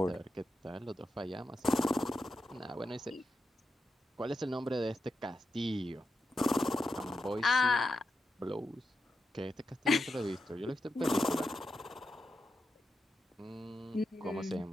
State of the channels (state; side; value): normal; both; correlation 0.88